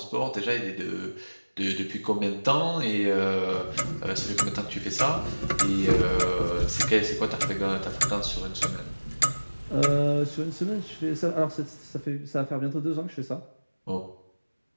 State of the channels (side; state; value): both; inverted; correlation -1.00